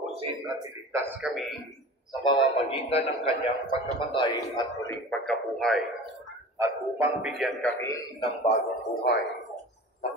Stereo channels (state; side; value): normal; both; correlation 0.37